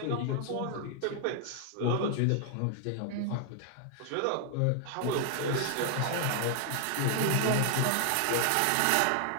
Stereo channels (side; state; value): both; different; correlation 0.00